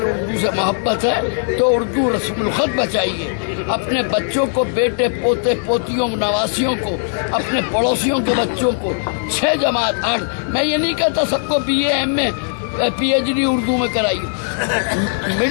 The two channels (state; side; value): silent; right; digital silence